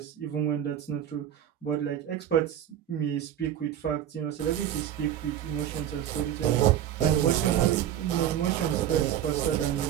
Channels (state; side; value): quieter; left; 10.6 dB